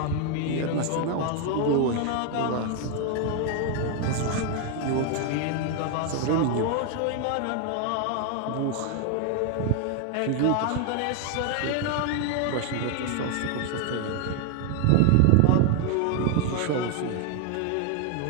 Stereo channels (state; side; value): different; both; correlation 0.00